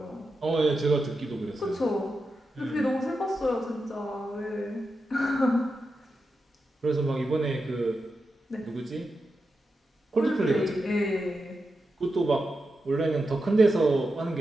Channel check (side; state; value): both; normal; correlation 0.89